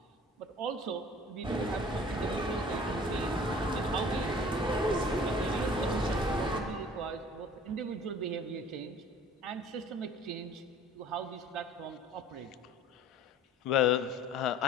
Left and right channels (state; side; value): normal; both; correlation 0.48